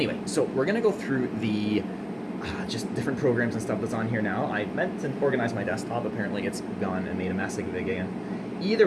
so we're going to go through the just different programs and stuff that's on here now. I meant to organize my desktop. Apparently it's gone and made a mess of it again.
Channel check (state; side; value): identical; both; correlation 1.00